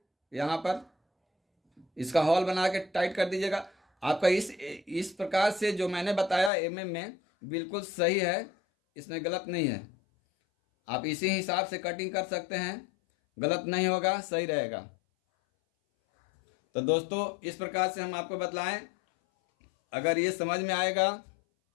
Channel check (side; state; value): right; drops out; at 6.5 s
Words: यहाँ पर, इसका हॉल बना के टाइट कर दीजिएगा। आपका इस प्रकार से जो मैंने बताया mm में बिल्कुल सही है, इसमें गलत नहीं है। आप इसी हिसाब से कटिंग कर सकते हैं, गलत नहीं होगा, सही रहेगा। तो दोस्तों इस प्रकार से हम आपको बतलाएं। अगर ये समझ में आएगा,